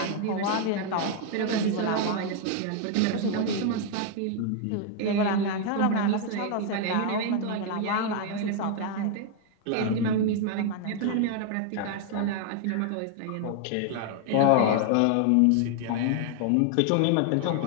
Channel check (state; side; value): different; both; correlation 0.00